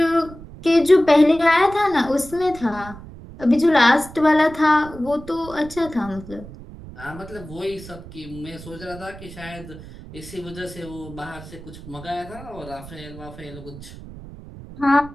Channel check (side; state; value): right; noise; rumble, 16 dB below the sound